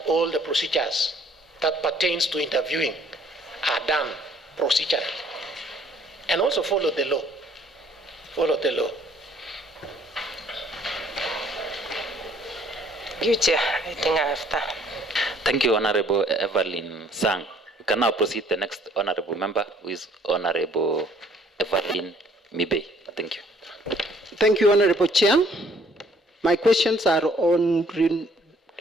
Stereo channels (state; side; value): normal; both; correlation 0.61